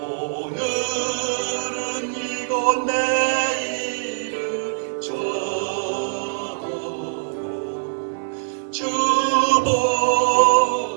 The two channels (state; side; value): silent; left; 64 dB below the other